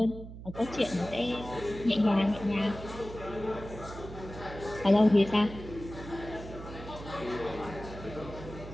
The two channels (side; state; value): right; noise; hum, 12 dB below the sound